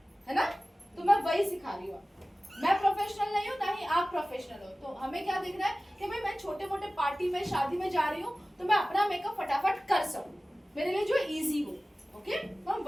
है ना? तो मैं वही सिखा रही हूँ। मैं प्रोफेशनल नहीं हूँ, ना ही आप प्रोफेशनल हो। तो हमें क्या देखना है कि भाई मैं छोटे मोटे पार्टी में, शादी में जा रही हूँ तो मैं अपना मेकअप फटाफट कर सकूं, मेरे लिए जो इजी हो। ओके, तो हम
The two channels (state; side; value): normal; both; correlation 0.97